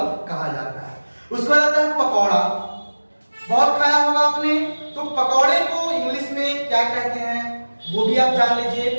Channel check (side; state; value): both; inverted; correlation -1.00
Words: कहा जाता है। उसके बाद आता है पकौड़ा, बहुत खाया होगा आपने। तो पकौड़े को इंग्लिश में क्या कहते हैं वो भी आप जान लीजिए,